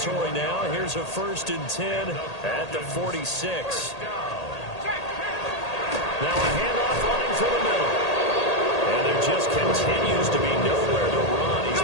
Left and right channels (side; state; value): right; late; 1.8 ms